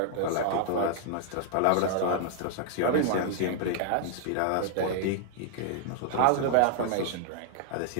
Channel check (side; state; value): both; different; correlation -0.01